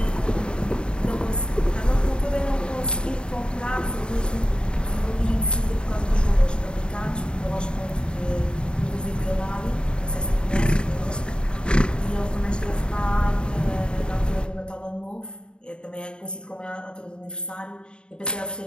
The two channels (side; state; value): right; late; 0.051 ms